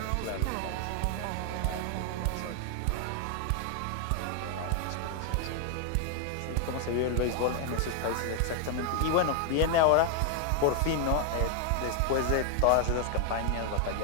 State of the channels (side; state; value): both; different; correlation 0.00